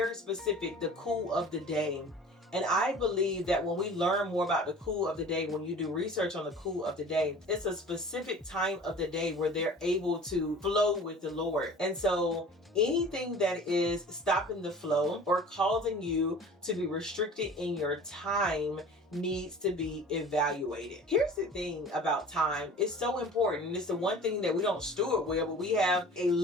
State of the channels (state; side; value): normal; both; correlation 0.43